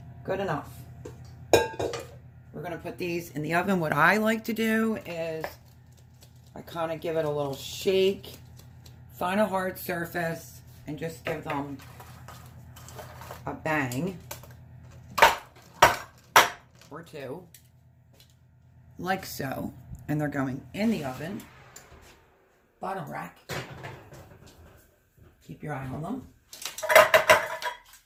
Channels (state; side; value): identical; both; correlation 1.00